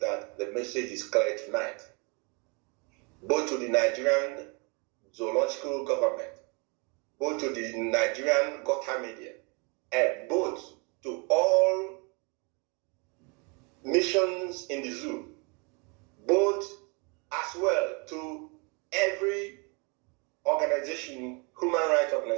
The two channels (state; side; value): quieter; left; 32.1 dB